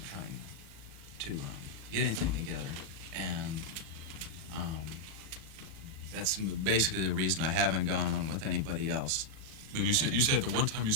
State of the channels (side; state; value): left; late; 37 ms